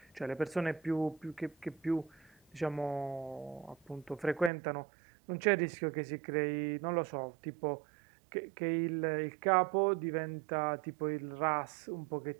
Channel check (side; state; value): left; drops out; at 4.5 s